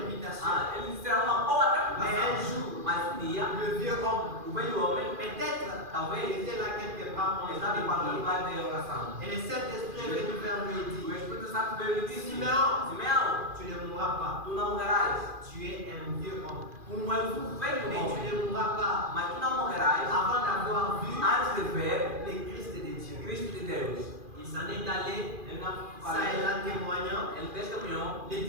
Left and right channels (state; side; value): late; left; 2.4 ms